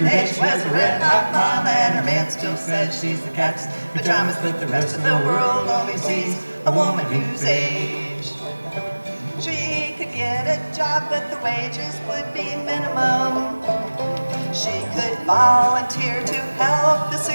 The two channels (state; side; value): inverted; both; correlation -1.00